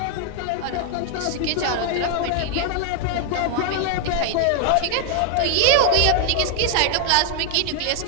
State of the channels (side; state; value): both; different; correlation 0.00